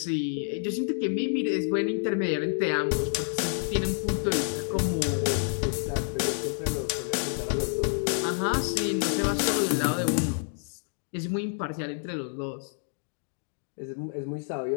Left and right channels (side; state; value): right; silent; digital silence